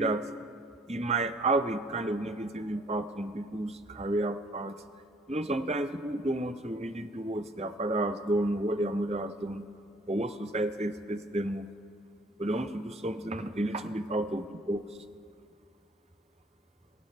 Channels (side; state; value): both; normal; correlation 0.59